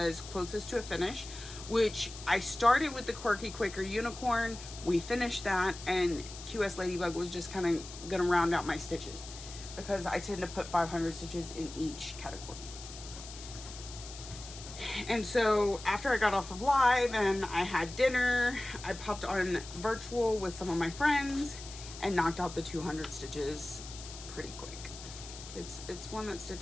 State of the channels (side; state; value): left; noise; hiss, 13 dB below the sound